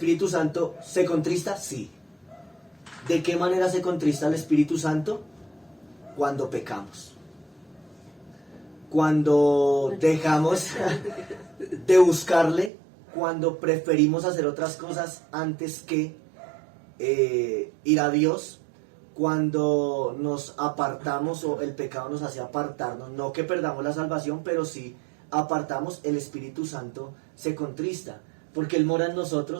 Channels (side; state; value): left; drops out; at 12.7 s